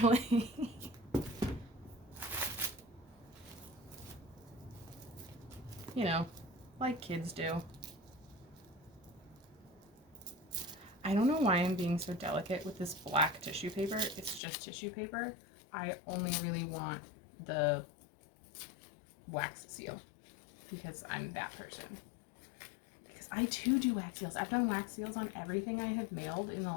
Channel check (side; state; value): right; drops out; at 14.4 s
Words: You know, like kids do. I don't know why I'm being so delicate with this black tissue paper. It's just tissue paper. I only really want the wax seal because I'm that person. I too do wax seals. I've done wax seals on everything I have mailed